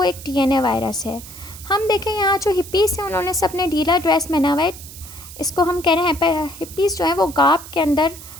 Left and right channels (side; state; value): right; noise; hiss, 15 dB below the sound